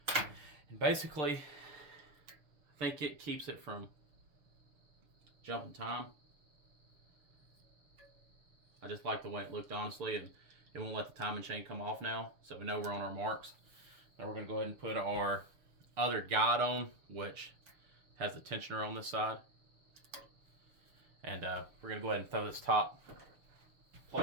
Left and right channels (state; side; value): late; left; 7.0 ms